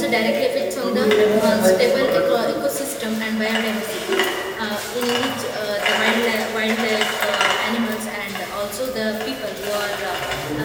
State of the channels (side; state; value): both; identical; correlation 1.00